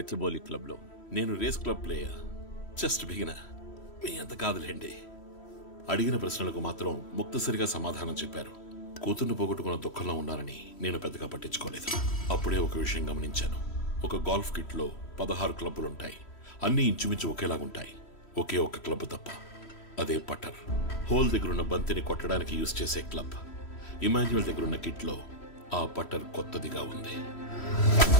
క్లబ్లో. నేను race club player. Just beginner. మీ అంత కాదులేండి. అడిగిన ప్రశ్నలకు మాత్రం ముక్తసరిగా సమాధానం చెప్పారు. కూతుర్ని పోగొట్టుకున్న దుఃఖంలో ఉన్నారని నేను పెద్దగా పట్టించుకోలేదు. అప్పుడే ఒక విషయం గమనించాను. ఒక గోల్ఫ్ కిట్లో 16 క్లబ్బులుంటాయి. అన్నీ ఇంచుమించు ఒకేలాగుంటాయి. ఒకే ఒక్క క్లబ్ తప్ప, అదే పట్టర్. హోల్ దగ్గరున్న బంతిని కొట్టడానికి యూజ్ చేసే క్లబ్. ఇమాన్యుయల్ దగ్గరున్న కిట్లో ఆ పట్టర్ కొత్తదిగా ఉంది.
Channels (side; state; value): right; late; 3.1 ms